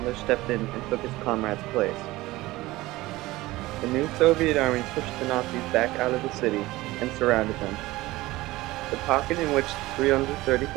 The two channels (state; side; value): quieter; left; 18.8 dB